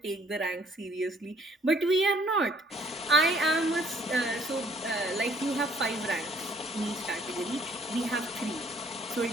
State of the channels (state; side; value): normal; both; correlation 0.61